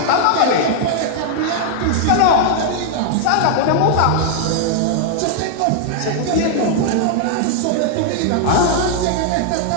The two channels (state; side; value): different; both; correlation -0.01